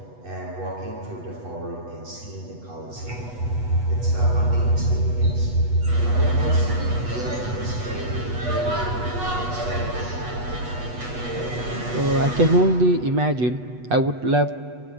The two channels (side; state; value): left; late; 8.2 ms